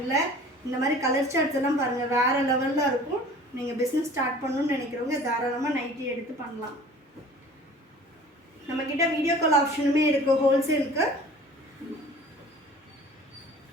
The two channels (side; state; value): both; normal; correlation 0.46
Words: இந்த மாதிரி கலர் சார்ட்ஸ் எல்லாம் பாருங்கள் வேறு லெவலில் இருக்கும். நீங்கள் பிஸ்னஸ் ஸ்டார்ட் பண்ணணும்னு நினைக்கிறவங்க தாராளமாக நைட்டி எடுத்து பண்ணலாம். நம்மக்கிட்ட வீடியோ கால் ஆப்ஷனுமே இருக்குது ஹோல்சேலுக்கு.